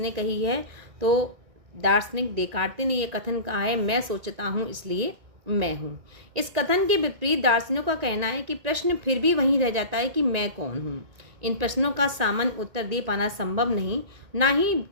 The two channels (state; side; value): late; left; 1.9 ms